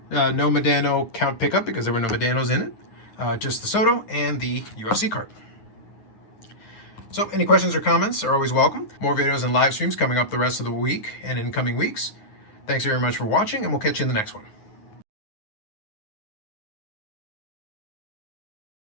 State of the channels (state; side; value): late; right; 9.5 ms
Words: No Medano count pickup because there were no Medanos in it. Just the Soto and the UFC card. So any questions or comments are always welcome. More videos and live streams coming up the rest of the week and in coming weeks. Thanks very much for watching, and we'll catch you in the next one.